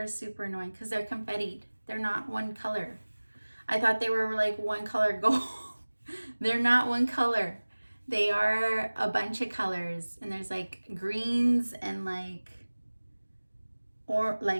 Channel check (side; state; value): both; inverted; correlation -1.00